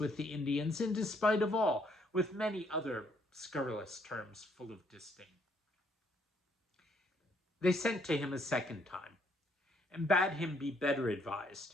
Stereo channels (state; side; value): normal; both; correlation 0.69